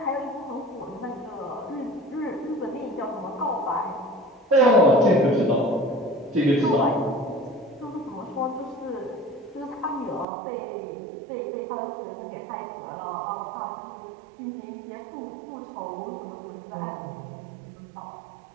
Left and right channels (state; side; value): drops out; left; at 10.2 s